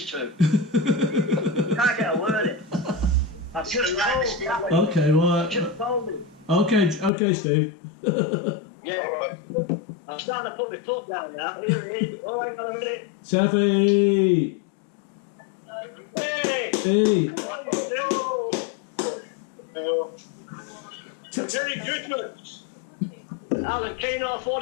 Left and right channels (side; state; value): right; drops out; at 7.1 s